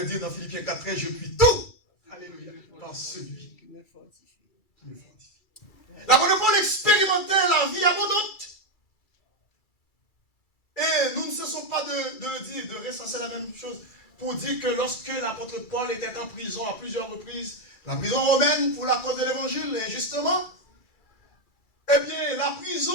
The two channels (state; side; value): late; right; 2.3 ms